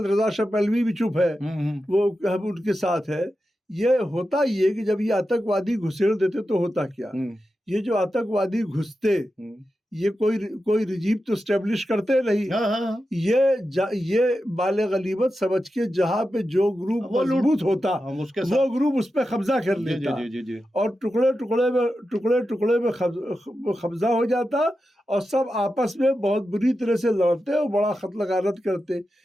रजा शाह पहलवी भी चुप है, वो हम उनके साथ है। ये होता ये कि जब ये आतंकवादी घुसेड़ देते तो होता क्या, ये जो आतंकवादी घुसते ये कोई रिजीम तो स्टेब्लिश करते नहीं। ये बाले गलीबत समझ के जहाँ पे जो ग्रुप मजबूत होता वो ग्रुप उस पर कब्जा कर लेता और टुकड़े टुकड़े में कब्जा हो जाता और सब आपस में बहुत बुरी तरह से लड़ते और बड़ा कत्ल गारत करते।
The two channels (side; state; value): both; normal; correlation 0.90